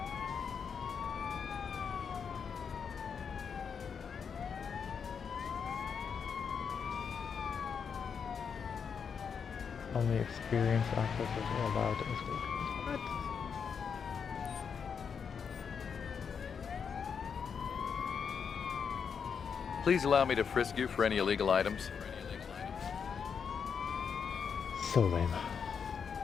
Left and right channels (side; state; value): right; quieter; 6.6 dB